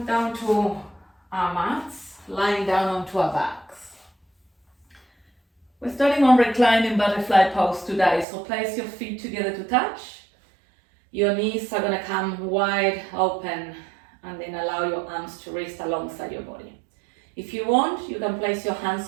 down to our mats, lying down onto our backs. We're starting on reclining butterfly pose today, so place your feet together to touch. Your knees are gonna come wide open and then allow your arms to rest alongside your body. If you want, you can place your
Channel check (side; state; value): left; drops out; at 8.2 s